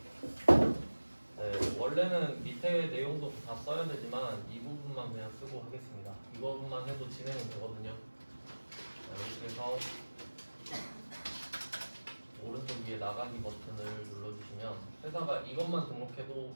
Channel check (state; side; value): inverted; both; correlation -1.00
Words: 네, 원래는 밑에 내용도 다 써야 되지만 이 부분만 그냥 쓰고 하겠습니다. 이것만 해도 진행은 되거든요. 이렇게 해서 오른쪽 위에 나가기 버튼을 눌러주시면 회사가 이것만 등록해도